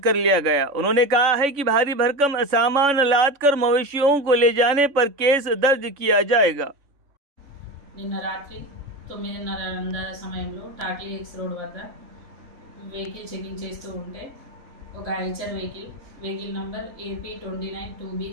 कर लिया गया। उन्होंने कहा है कि भारी भरकम सामान लाद कर मवेशियों को ले जाने पर केस दर्ज किया जाएगा। నిన్న రాత్రి 9:30 సమయంలో టాక్లీ ఎక్స్ రోడ్ వద్ద వెహికల్ చెకింగ్ చేస్తూ ఉంటే ఒక Eicher vehicle number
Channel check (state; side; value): late; left; 3.5 ms